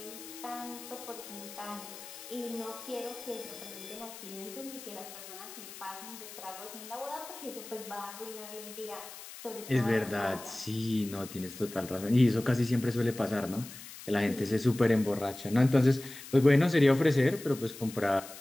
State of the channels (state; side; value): noise; left; hiss, 14 dB below the sound